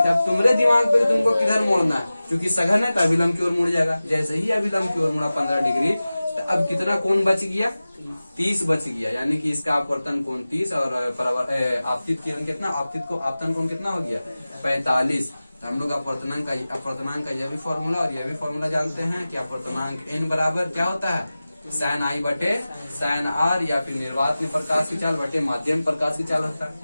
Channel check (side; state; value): both; inverted; correlation -0.97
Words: अब तुम्हारे दिमाग पे तुमको किधर मोड़ना है? क्योंकि सघन है तो अभिलंब की ओर मुड़ जाएगा। जैसे ही अभिलंब की ओर मुड़ा 15 डिग्री, तो अब कितना कोण बच गया? 30 बच गया। यानी कि इसका अपवर्तन कोण 30 और आपतित किरण कितना? आपतन कोण कितना हो गया? 45। तो हम लोग अपवर्तनांक का यह भी फॉर्मूला और यह भी फॉर्मूला जानते हैं कि अपवर्तनांक n बराबर क्या होता है? sin I बटे sin R, या फिर निर्वात में प्रकाश की चाल बटे माध्यम प्रकाश की चाल होता है।